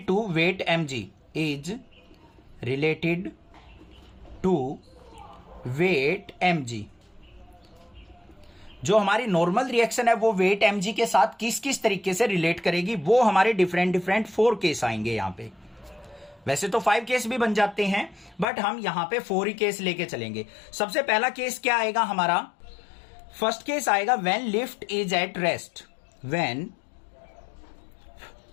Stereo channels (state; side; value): drops out; right; at 18.4 s